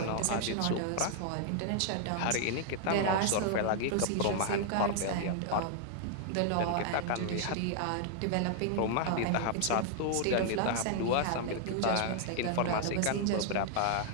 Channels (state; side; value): different; both; correlation 0.00